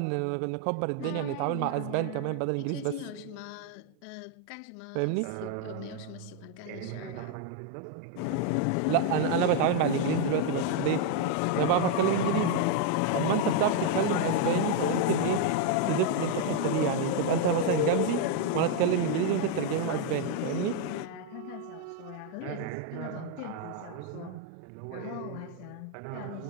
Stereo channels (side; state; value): both; different; correlation 0.00